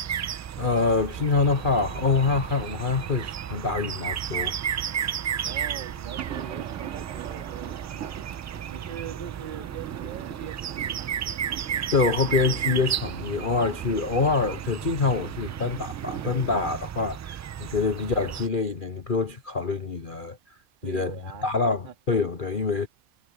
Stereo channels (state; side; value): normal; both; correlation -0.08